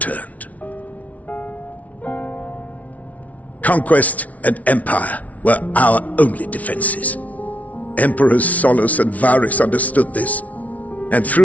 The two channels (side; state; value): right; late; 0.069 ms